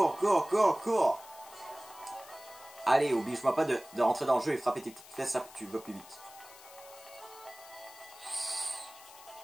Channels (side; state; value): left; noise; hiss, 19 dB below the sound